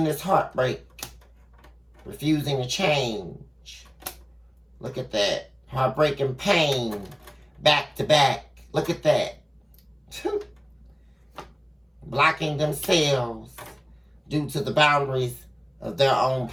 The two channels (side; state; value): both; identical; correlation 1.00